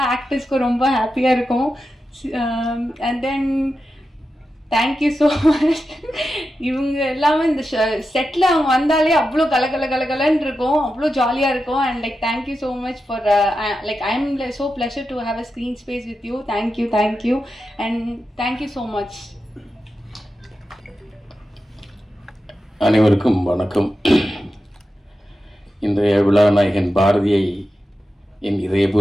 ஆக்டர்ஸ்க்கும் ரொம்ப ஹாப்பியாக இருக்கும். And then thank you so much. இவங்க எல்லாமே இந்த செட்டில் அவங்க வந்தாலே அவ்வளோ கலகலன்னு இருக்கும், அவ்வளோ ஜாலியாக இருக்கும். And like thank you so much for like I am so pleasure to have a screen space with you. Thank you and thank you so much. அனைவருக்கும் வணக்கம். இன்றைய விழா நாயகன் பாரதியை என்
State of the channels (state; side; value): normal; both; correlation 0.90